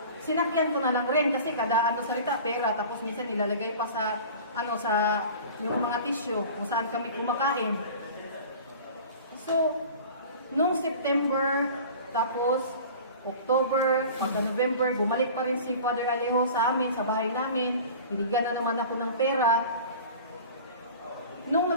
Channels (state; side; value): inverted; both; correlation -0.40